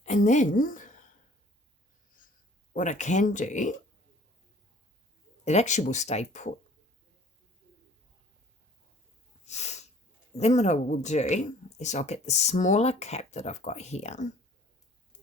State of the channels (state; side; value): normal; both; correlation 0.53